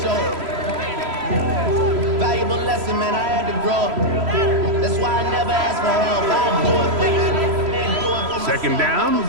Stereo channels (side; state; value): left; late; 3.0 ms